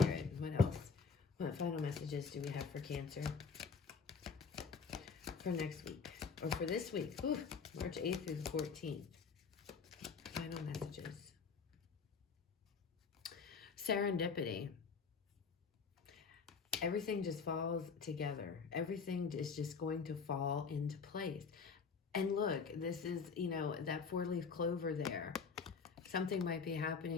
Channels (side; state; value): right; quieter; 5.4 dB